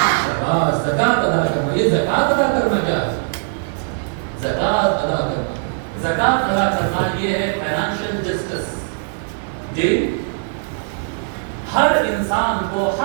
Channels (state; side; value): silent; left; 57 dB below the other